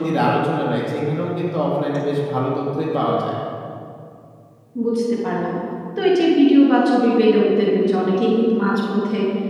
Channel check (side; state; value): both; identical; correlation 1.00